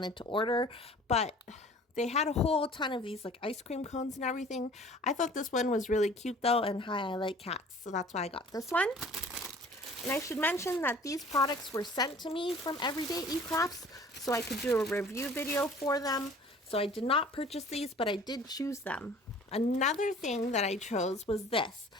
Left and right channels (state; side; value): normal; both; correlation 0.49